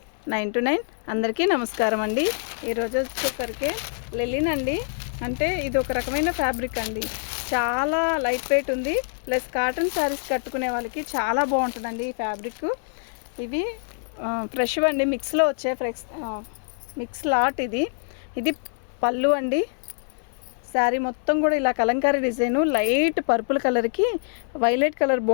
9 to 9. అందరికీ నమస్కారం అండి. ఈరోజు వచ్చేసరికి లెలిన్ అండి. అంటే ఇది ఒక రకమైన ఫ్యాబ్రిక్ అండి. చాలా లైట్ వెయిట్ ఉంది, ప్లస్ కాటన్ శారీస్ కట్టుకునే వాళ్ళకి చాలా బాగుంటుందండి ఈ ఫ్యాబ్రిక్. ఇవి ఫ్రెష్ అండి, మిక్స్లో వచ్చే మిక్స్ లాట్. ఇది పళ్ళు అండి. శారీ మొత్తం కూడా ఇలా కలంకారీ డిజైను, లైట్ పర్పుల్ కలర్కి వైలెట్ కలర్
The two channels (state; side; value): silent; right; digital silence